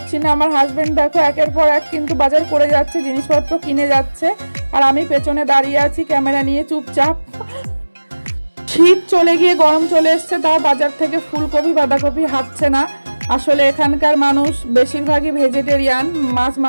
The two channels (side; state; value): both; inverted; correlation -1.00